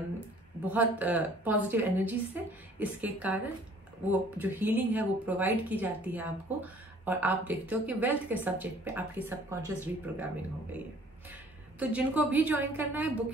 बहुत पॉजिटिव एनर्जी से। इसके कारण वो जो हीलिंग है वो प्रोवाइड की जाती है आपको, और आप देखते हो कि वेल्थ के सब्जेक्ट पे आपकी सबकॉन्शियस रीप्रोग्रामिंग हो गई है। तो जिनको भी ज्वाइन करना है,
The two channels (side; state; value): both; normal; correlation 0.55